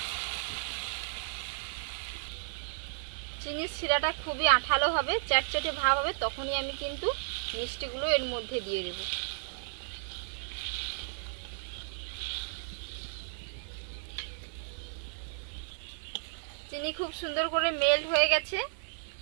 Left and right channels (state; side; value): silent; left; 55 dB below the other